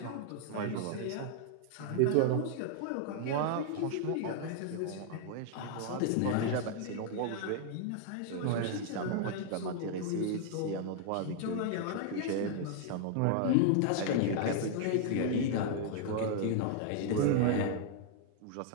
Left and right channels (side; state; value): both; different; correlation 0.00